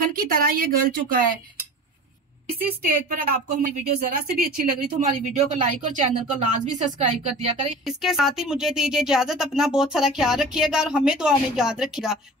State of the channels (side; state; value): both; normal; correlation 0.38